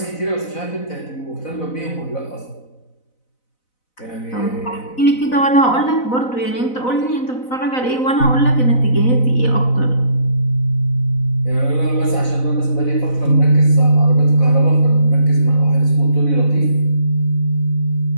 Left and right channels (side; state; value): right; late; 4.0 ms